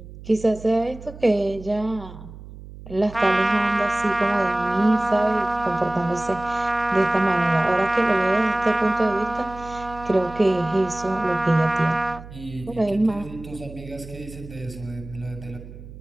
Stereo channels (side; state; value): right; noise; hum, 16 dB below the sound